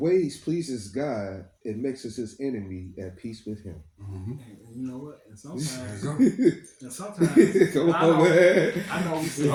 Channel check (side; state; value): both; identical; correlation 1.00